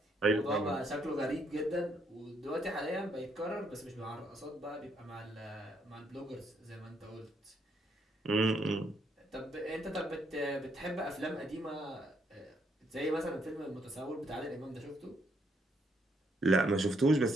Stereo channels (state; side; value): normal; both; correlation 0.72